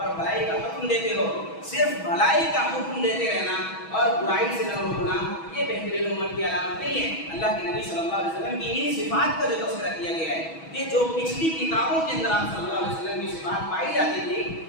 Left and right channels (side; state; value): right; late; 6.2 ms